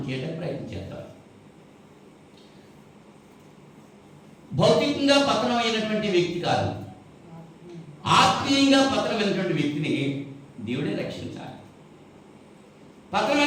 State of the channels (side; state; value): both; identical; correlation 1.00